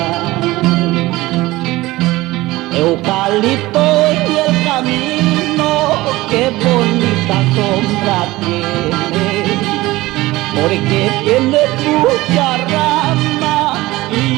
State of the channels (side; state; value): left; quieter; 19.0 dB